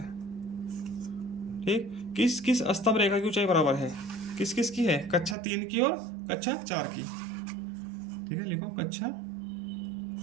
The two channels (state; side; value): drops out; left; at 5.4 s